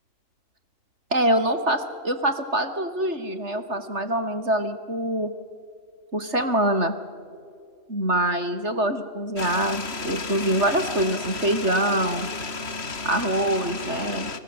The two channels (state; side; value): late; left; 3.1 ms